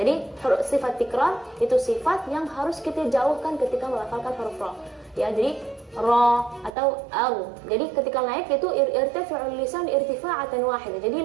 sifat tikrar itu sifat yang harus kita jauhkan ketika melafalkan huruf ra. Ya, jadi ra atau al. Jadi ketika naik itu irtifa'ul lisan irtifa'atan wahidah. Jadi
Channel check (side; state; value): left; drops out; at 6.8 s